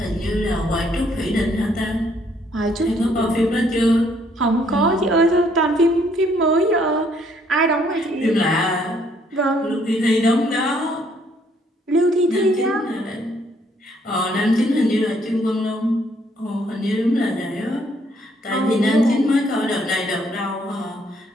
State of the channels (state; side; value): normal; both; correlation 0.67